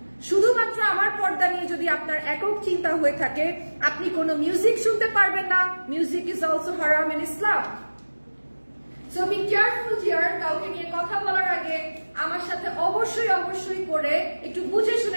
শুধুমাত্র আমার পর্দা নিয়ে যদি আপনার একক চিন্তা হয়ে থাকে, আপনি কোনো মিউজিক শুনতে পারবেন না। মিউজিক ইজ অলসো হারাম in Islam. So be careful dear. কাউকে নিয়ে কথা বলার আগে আমার সাথে অবশ্যই অবশ্যই করে একটু বুঝে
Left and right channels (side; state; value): both; inverted; correlation -1.00